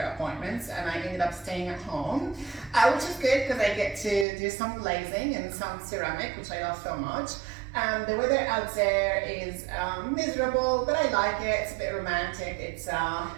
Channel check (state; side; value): drops out; left; at 4.2 s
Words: appointments and I ended up staying at home, which is good because I get to do some glazing and some ceramic, which I love so much. The weather out there is miserable, but I like it. It's a bit romantic. It's